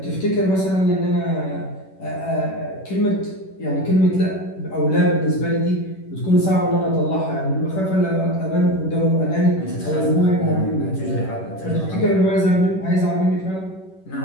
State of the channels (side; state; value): right; late; 11 ms